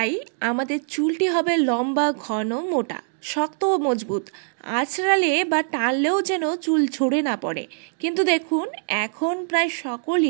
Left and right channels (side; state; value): left; silent; digital silence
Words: আমাদের চুলটি হবে লম্বা, ঘন, মোটা, শক্ত ও মজবুত। আঁচড়ালে বা টানলেও যেন চুল ঝরে না পড়ে। কিন্তু দেখুন, এখন প্রায়